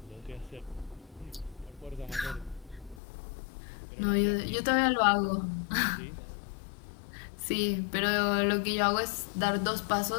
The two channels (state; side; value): drops out; right; at 3.0 s